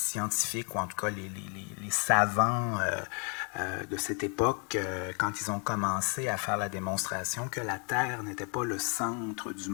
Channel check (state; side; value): quieter; right; 37.3 dB